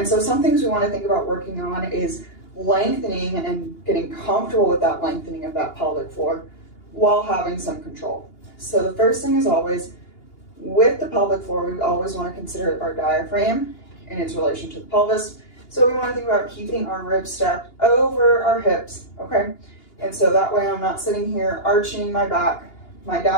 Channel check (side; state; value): right; late; 2.8 ms